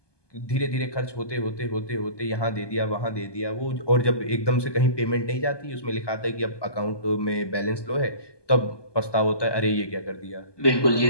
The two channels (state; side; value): late; right; 1.2 ms